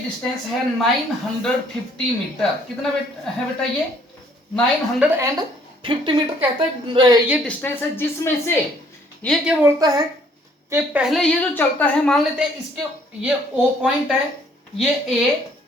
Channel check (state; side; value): normal; both; correlation 0.62